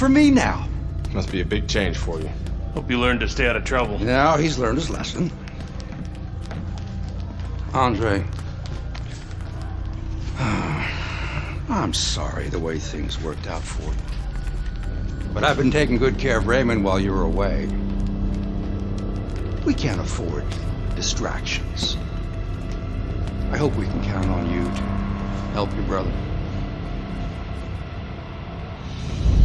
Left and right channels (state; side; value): identical; both; correlation 1.00